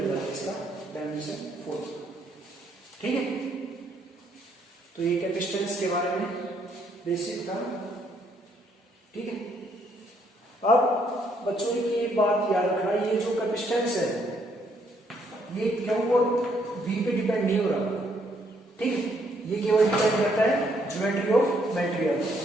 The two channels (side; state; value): both; normal; correlation 0.70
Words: जाएगा इसका डायमेंशन फॉर्मूला। ठीक है, तो ये कैपेसिटेंस के बारे में बेसिक था। ठीक है, अब बच्चों की ये बात याद रखना, ये जो कैपेसिटेंस है ये क्यों और वी पे डिपेंड नहीं हो रहा। ठीक है, ये केवल डिपेंड करता है ज्योमेट्री ऑफ मटेरियल।